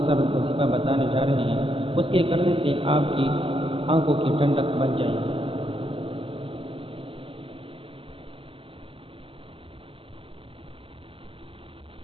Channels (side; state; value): left; late; 0.26 ms